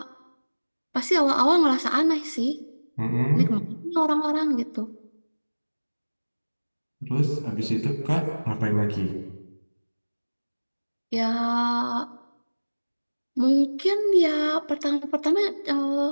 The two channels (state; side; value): inverted; both; correlation -1.00